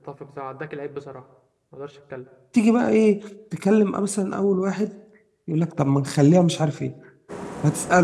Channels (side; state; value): both; identical; correlation 1.00